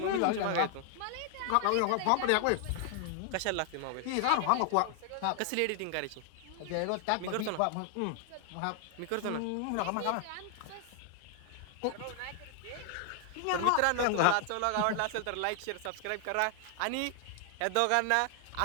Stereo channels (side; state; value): both; different; correlation 0.00